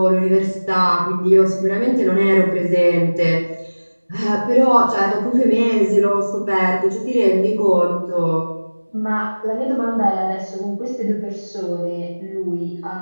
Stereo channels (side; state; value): both; inverted; correlation -1.00